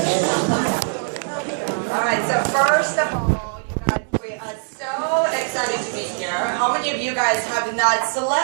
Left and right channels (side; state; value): left; silent; digital silence